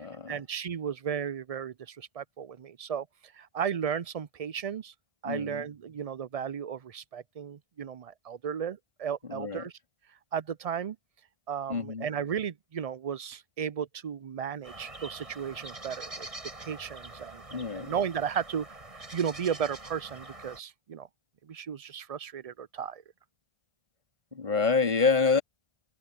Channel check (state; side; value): late; left; 1.7 ms